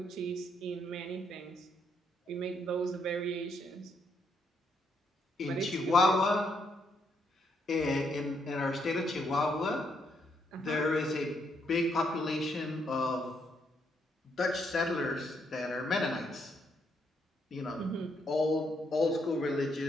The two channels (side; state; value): both; normal; correlation 0.75